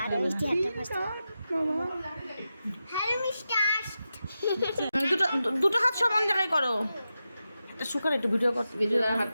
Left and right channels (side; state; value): both; inverted; correlation -0.90